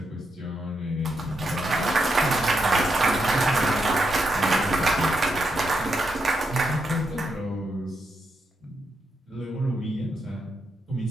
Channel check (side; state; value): both; normal; correlation 0.83